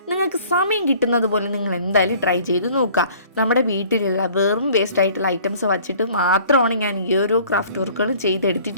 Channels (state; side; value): inverted; both; correlation -0.53